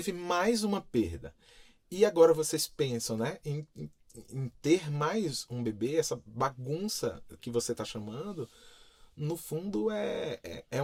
mais uma perda, e agora vocês pensam, né, em em ter mais um bebê, essa bagunça que você está chamando, no fundo é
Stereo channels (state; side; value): identical; both; correlation 1.00